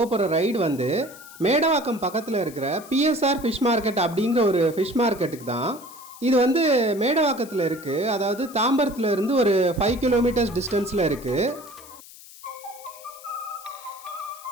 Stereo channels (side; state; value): left; noise; hiss, 19 dB below the sound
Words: போகிற ரைடு வந்து மேடவாக்கம் பக்கத்தில் இருக்கிற பிஎஸ்ஆர் ஃபிஷ் மார்க்கெட் அப்படிங்கிற ஒரு ஃபிஷ் மார்க்கெட்டுக்கு தான். இது வந்து மேடவாக்கத்தில் இருக்குது, அதாவது தாம்பரத்தில் இருந்து ஒரு 5 கிலோமீட்டர்ஸ் டிஸ்டன்ஸில் இருக்குது.